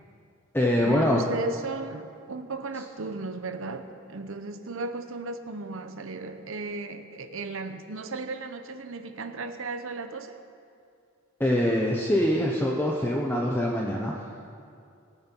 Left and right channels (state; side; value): normal; both; correlation 0.60